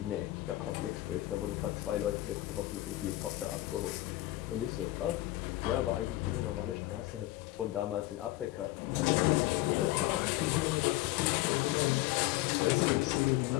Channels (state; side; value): quieter; right; 17.2 dB